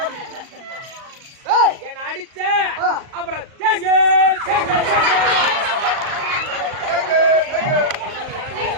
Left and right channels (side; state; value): left; late; 38 ms